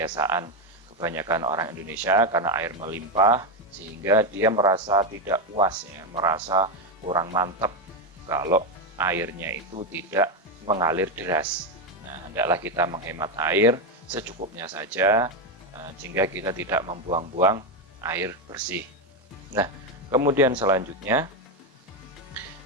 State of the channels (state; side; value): normal; both; correlation 0.09